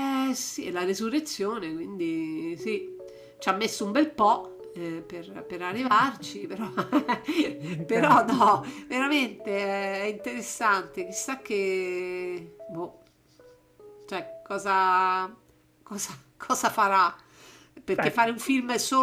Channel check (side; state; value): both; identical; correlation 1.00